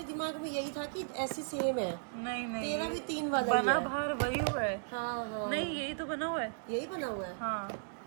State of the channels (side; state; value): left; silent; digital silence